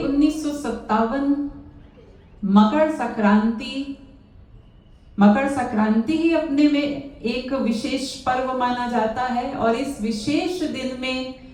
मकर संक्रांति ही अपने में एक विशेष पर्व माना जाता है। और इस विशेष दिन में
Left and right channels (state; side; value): identical; both; correlation 1.00